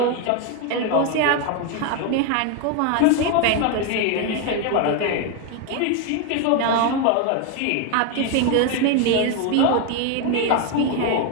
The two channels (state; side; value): different; both; correlation 0.01